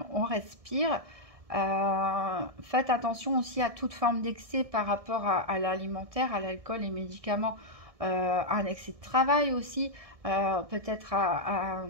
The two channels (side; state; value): left; late; 1.7 ms